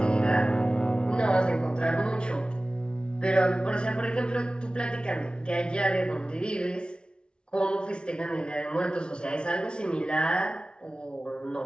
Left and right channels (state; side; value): late; right; 0.056 ms